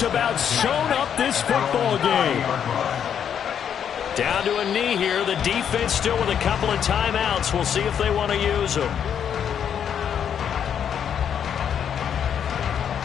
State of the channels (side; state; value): right; quieter; 8.5 dB